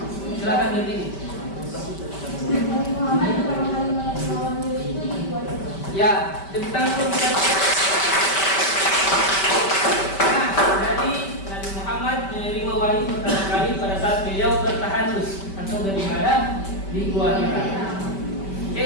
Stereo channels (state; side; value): late; right; 5.1 ms